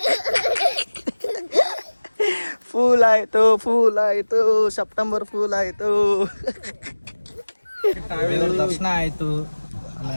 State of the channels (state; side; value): inverted; both; correlation -1.00